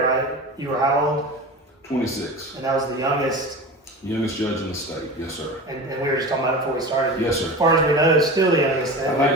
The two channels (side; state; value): both; normal; correlation 0.31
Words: right, you were how old? 26. And that was the youngest Judge in the state, yes, sir. And we were just talking about it before we started. Yes, sir. As far as we know, it's still the youngest. I